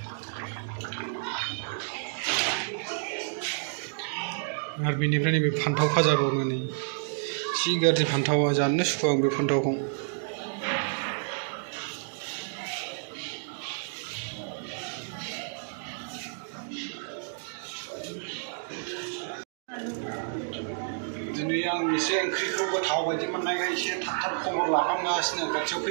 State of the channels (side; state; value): left; silent; digital silence